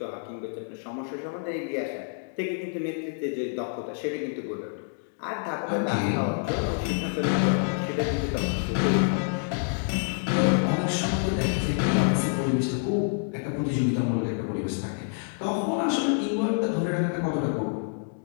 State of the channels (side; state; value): right; silent; 60 dB below the other